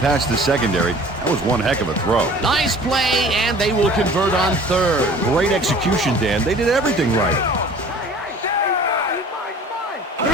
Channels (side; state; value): both; normal; correlation 0.47